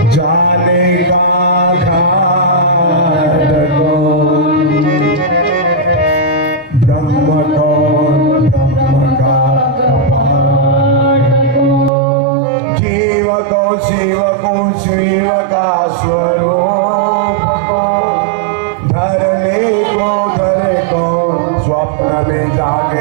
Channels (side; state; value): left; drops out; at 11.9 s